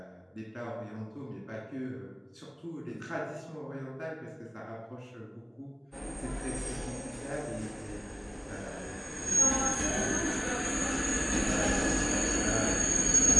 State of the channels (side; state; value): both; identical; correlation 1.00